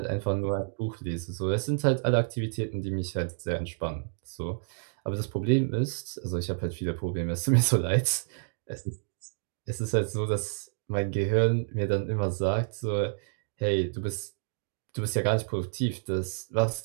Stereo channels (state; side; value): silent; left; digital silence